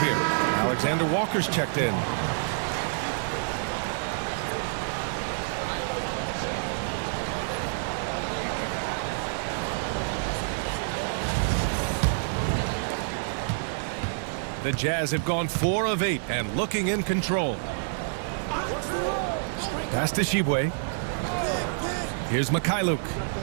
Alexander Walker's checked in. The Jazz have gone 4 of 8 and looking in control. Pass to Shibwe. Here's Mikhailuk.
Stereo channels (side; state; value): left; silent; 55 dB below the other